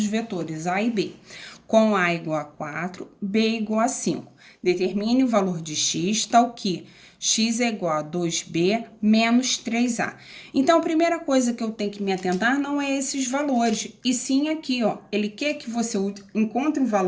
vetores A e B, com A igual a 4, B igual a 5. Determine o valor de x, tal que x é igual a 2b menos 3a. Então, a primeira coisa que eu tenho que me atentar não é esses valores, e sim aqui, ó. Ele quer que você encontre um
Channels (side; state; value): both; identical; correlation 1.00